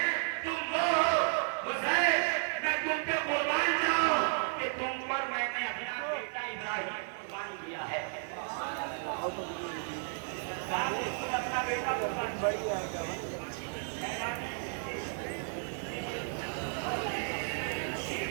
تم وہ ہو حسین میں تم پہ قربان جاؤں کہ تم پر میں نے اپنا بیٹا ابراہیم قربان کیا ہے. اپنا بیٹا قربان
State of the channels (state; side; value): silent; left; 55 dB below the other